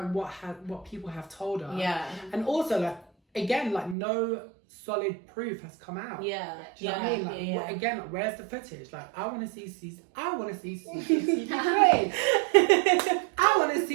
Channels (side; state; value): left; drops out; at 4.0 s